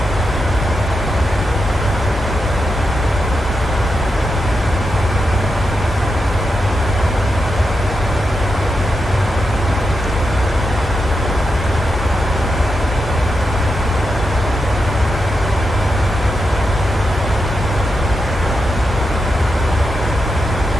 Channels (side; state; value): both; normal; correlation 0.86